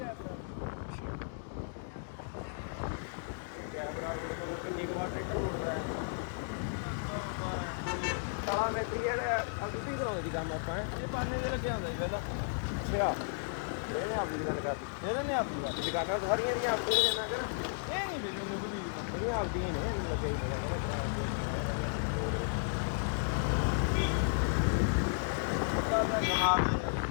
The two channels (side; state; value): right; silent; digital silence